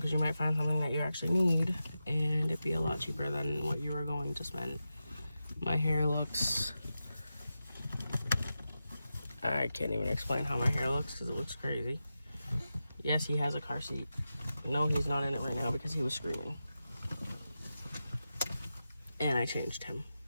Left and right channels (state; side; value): inverted; both; correlation -0.91